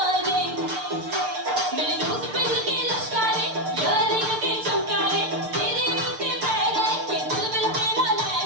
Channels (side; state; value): left; late; 6.7 ms